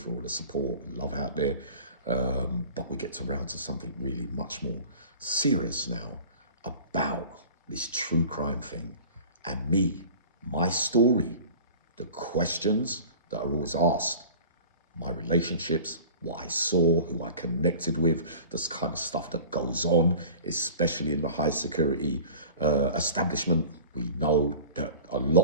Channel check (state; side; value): inverted; both; correlation -0.41